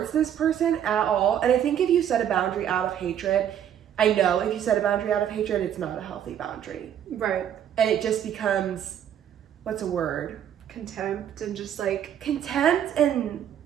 this person at all. And I think if you set a boundary out of hatred, I know if you set a boundary out of hatred, it's not a healthy boundary. Right. And it just becomes, what's a word? Contempt and just like... Contempt and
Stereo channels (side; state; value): left; quieter; 9.7 dB